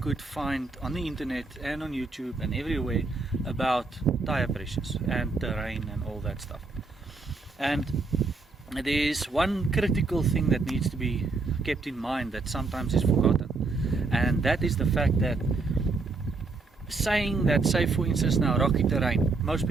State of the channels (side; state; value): left; quieter; 3.8 dB